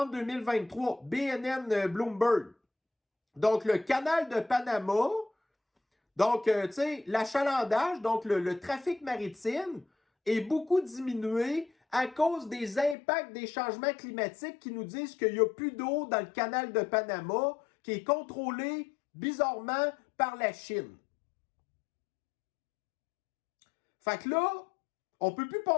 2023, BNN Bloomberg. Donc, le canal de Panama. Donc, tu sais, l'achalandage, donc le trafic maritime est beaucoup diminué à cause des impacts des changements climatiques qui nous disent qu'il n'y a plus d'eau dans le canal de Panama qui est contrôlé bizarrement par la Chine. Fait que là, on ne peut plus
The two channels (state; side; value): drops out; right; at 13.0 s